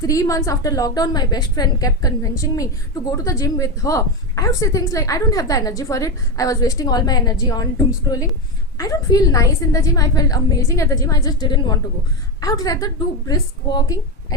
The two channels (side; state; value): both; normal; correlation 0.12